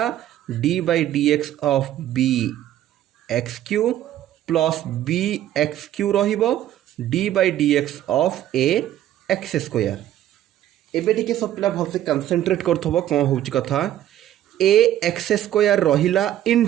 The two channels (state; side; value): quieter; left; 12.4 dB